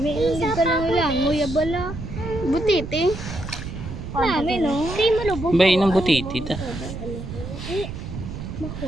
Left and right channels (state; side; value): noise; right; rumble, 8 dB below the sound